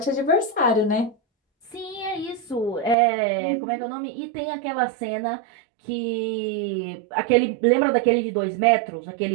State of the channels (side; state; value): left; drops out; at 3.0 s